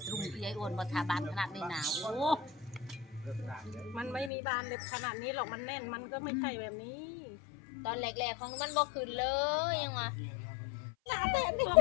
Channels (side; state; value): right; drops out; at 4.3 s